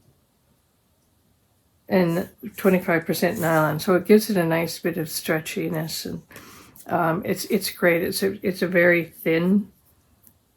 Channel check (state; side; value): identical; both; correlation 1.00